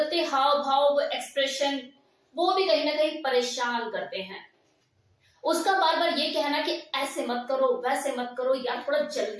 हाव भाव, वो एक्सप्रेशन, वो भी कहीं ना कहीं परेशान करते हैं। उसका बार बार ये कहना कि ऐसे मत करो, वैसे मत करो, या थोड़ा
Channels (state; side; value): identical; both; correlation 1.00